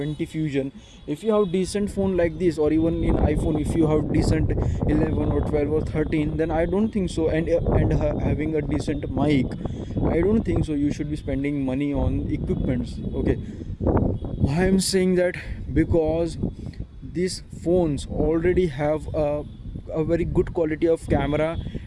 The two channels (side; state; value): both; identical; correlation 1.00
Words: Fusion, if you have decent phone like this, or even in iPhone, if you have decent 11 or 12 or 13, then I don't think so. And having a decent mic, I don't think so. You should be spending money on equipments. Okay, why I'm saying that? Because these phones already have a very good quality of camera